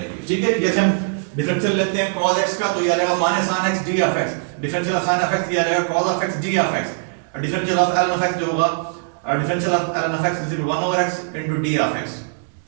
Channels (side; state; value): left; silent; digital silence